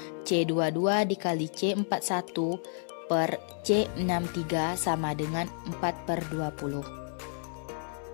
C22 dikali C41 per C63 sama dengan 4/20.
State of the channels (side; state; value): right; silent; 57 dB below the other